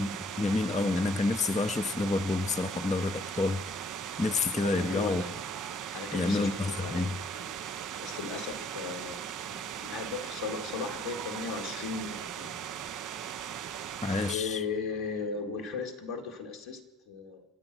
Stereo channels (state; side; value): normal; both; correlation 0.60